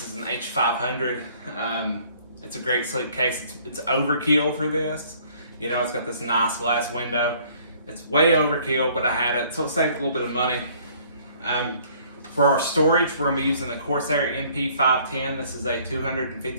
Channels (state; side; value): inverted; both; correlation -0.58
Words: is an H500. It's a great sleek case. It's overkill for this. You know, it's got this nice glass window. It's way overkill, but I had it, so it saved a little bit of money. For our storage, we're going to be using the Corsair MP510. This is a